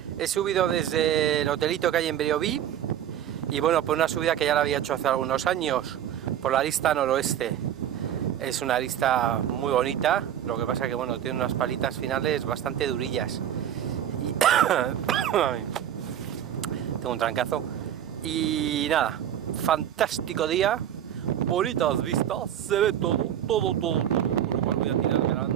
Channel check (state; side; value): quieter; left; 10.5 dB